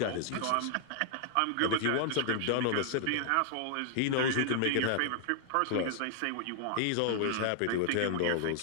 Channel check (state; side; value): different; both; correlation 0.00